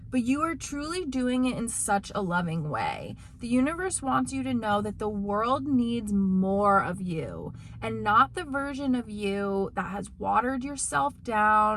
But you are truly doing it in such a loving way. The universe wants you to know that the world needs more of you and not the version of you that has watered yourself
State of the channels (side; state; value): both; identical; correlation 1.00